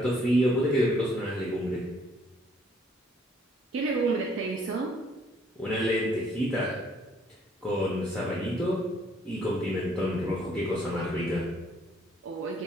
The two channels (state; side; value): normal; both; correlation 0.64